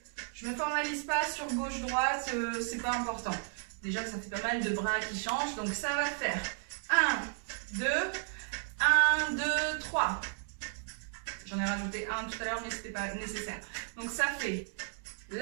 Je ne me formalise pas sur gauche-droite, c'est pas important. Déjà que ça fait pas mal de bras qui changent, donc ça va faire 1, 2, 1, 2, 3. J'en ai rajouté un tout à l'heure, mais ce n'était pas nécessaire. Donc ça fait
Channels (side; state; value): left; silent; digital silence